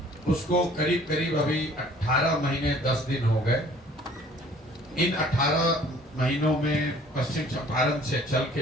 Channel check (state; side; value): normal; both; correlation 0.54